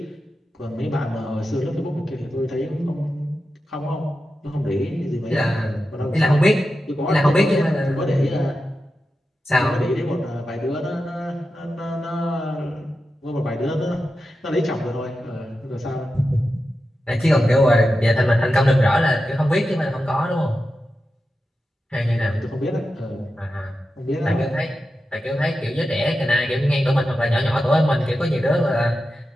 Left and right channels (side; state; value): both; normal; correlation 0.91